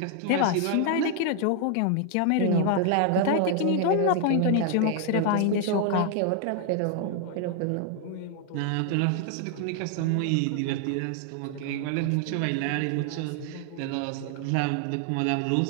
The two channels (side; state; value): both; different; correlation 0.00